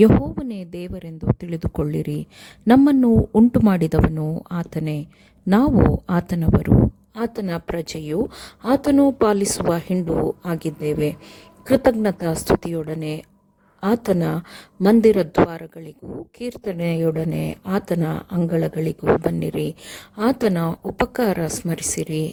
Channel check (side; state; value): both; identical; correlation 1.00